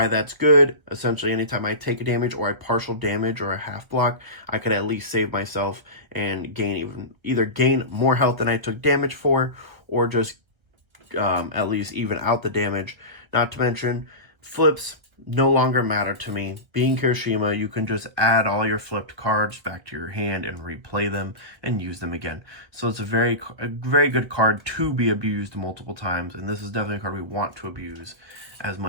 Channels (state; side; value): late; left; 1.6 ms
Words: that's good. Essentially, anytime I take a damage or I partial damage or a half block, I could at least save myself and either gain more health than I took damage for, or just at least even out the damage. Not to mention, flips no longer matter to me. Being Kirishima, you can just add all your flipped cards back to your hand and replay them and use them again. So it's a very good card to be abused multiple times, and this is definitely a card we want to abuse as